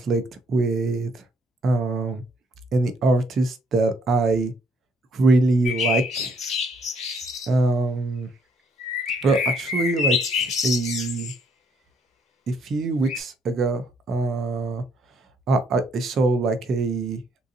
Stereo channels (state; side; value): normal; both; correlation 0.68